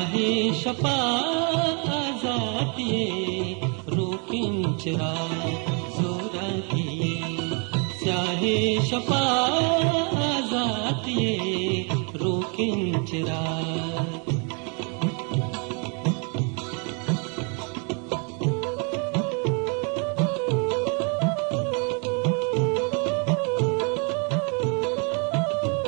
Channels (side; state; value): left; quieter; 36.6 dB